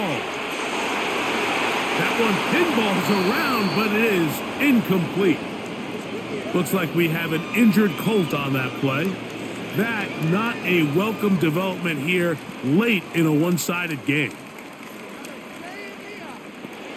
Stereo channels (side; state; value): both; identical; correlation 1.00